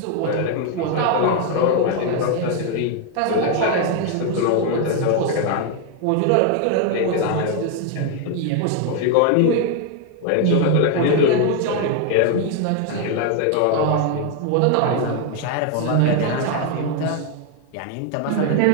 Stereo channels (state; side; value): different; both; correlation 0.00